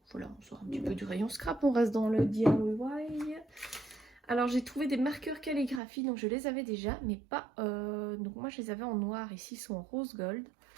on sort un petit peu du rayon scrap, on reste dans le DIY. Alors j'ai trouvé des marqueurs calligraphie, donc je les avais déjà, mais pas... donc moi je les avais en noir, ici ils sont en rose gold.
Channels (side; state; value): left; drops out; at 5.8 s